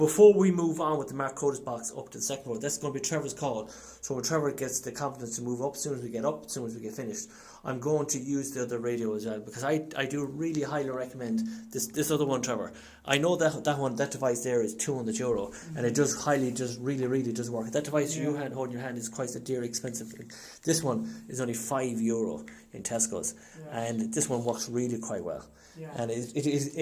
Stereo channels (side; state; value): both; identical; correlation 1.00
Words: we move on with the Mark Codis box up to the second floor, that's going to be Trevor's call. So when Trevor gets the confidence to move up, as soon as we get up, as soon as we get finished, I'm going to use the other radio as well, because I do really highly recommend this other one, Trevor. I know that device there is €200, and it does really does work. That device you hold in your hand is quite a dear, expensive thing. This one is only €5 in Tesco's, and this one works really quite well. Yeah. And it